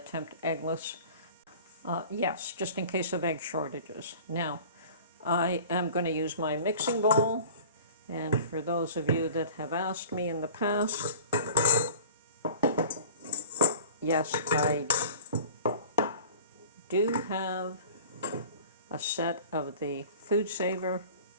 eggless. Yes, just in case of egg shortages. Now, I am going to use my mixing bowl, and for those of you that have asked me in the past, yes, I do have a set of the Food Saver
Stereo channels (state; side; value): inverted; both; correlation -0.43